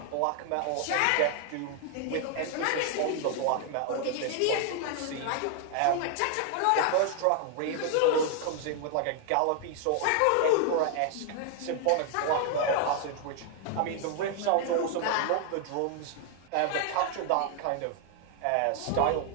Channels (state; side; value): different; both; correlation 0.00